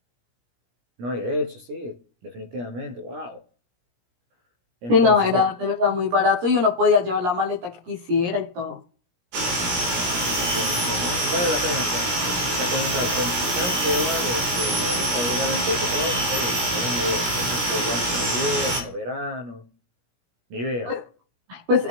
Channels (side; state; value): left; late; 17 ms